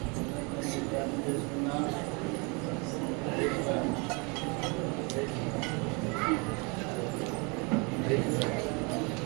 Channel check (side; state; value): left; quieter; 30.9 dB